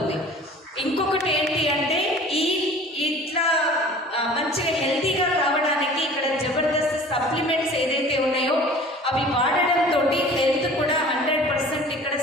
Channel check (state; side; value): normal; both; correlation 0.45